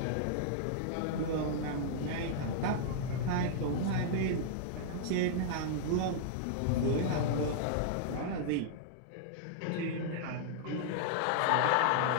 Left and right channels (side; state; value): both; different; correlation -0.01